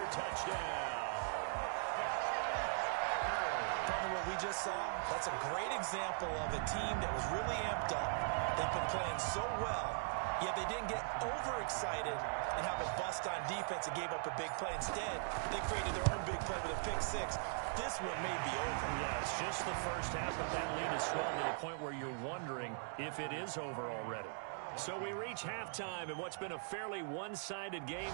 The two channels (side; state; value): left; silent; digital silence